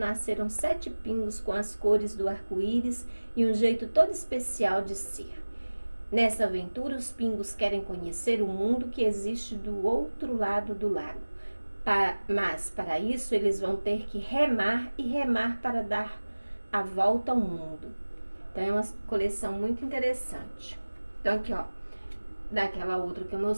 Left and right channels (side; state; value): both; inverted; correlation -1.00